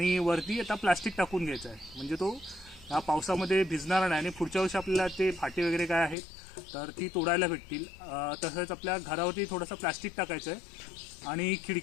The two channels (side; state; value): right; drops out; at 6.2 s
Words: वरती आता प्लास्टिक टाकून घ्यायचं आहे, म्हणजे तो ह्या पावसामध्ये भिजणार नाही. आणि पुढच्या वर्षी आपल्याला ते फाटे वगैरे काय आहेत तर ती तोडायला भेटतील. तसंच आपल्या घरावरती थोडंसं प्लास्टिक टाकायचं आहे आणि